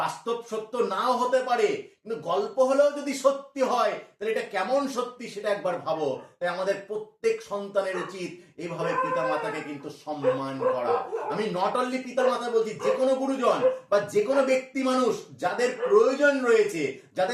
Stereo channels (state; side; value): identical; both; correlation 1.00